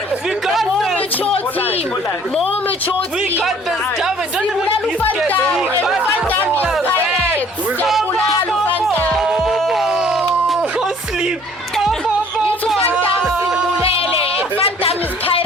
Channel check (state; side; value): normal; both; correlation 0.56